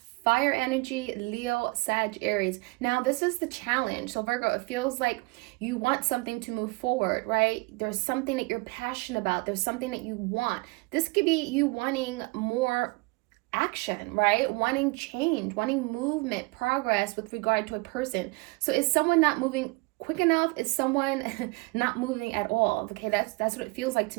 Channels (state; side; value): quieter; left; 26.4 dB